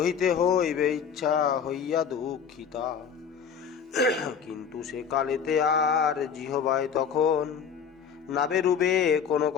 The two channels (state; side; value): quieter; right; 7.0 dB